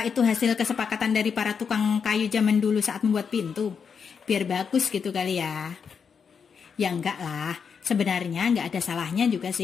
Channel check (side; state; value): right; quieter; 6.4 dB